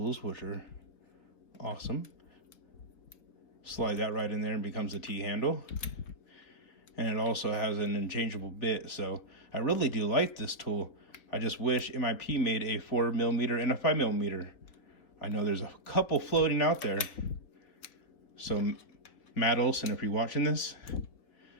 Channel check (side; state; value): right; late; 3.9 ms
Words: which are awesome. Slide that right in there and becomes a T-handle. And it also has an interchangeable bit, so I really do like this tool. I just wish MIP made a 4 millimeter and a 5 millimeter. I know there's a couple floating out there. So Matt Olson, if you're watching this,